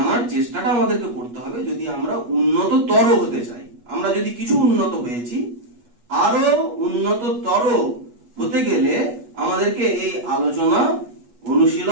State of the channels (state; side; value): late; left; 8.3 ms